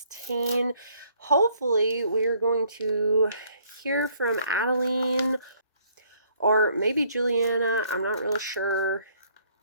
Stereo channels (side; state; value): both; inverted; correlation -0.64